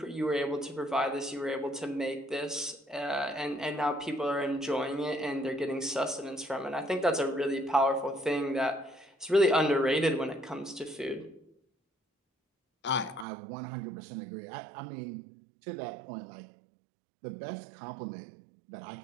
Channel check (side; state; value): left; drops out; at 13.2 s